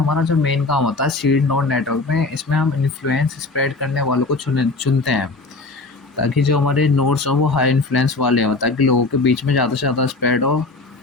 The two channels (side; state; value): right; quieter; 3.4 dB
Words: जो मेन काम होता है सीड नोड नेटवर्क में, इसमें हम इन्फ्लुएंस स्प्रेड करने वालों को चुनते हैं, ताकि जो हमारे नोड्स हों वो हाई इन्फ्लुएंस वाले हों, ताकि लोगों के बीच में ज़्यादा से ज़्यादा स्प्रेड हो।